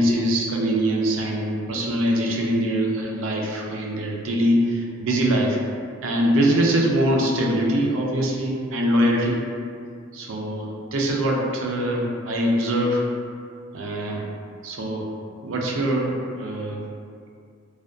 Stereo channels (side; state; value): both; normal; correlation 0.60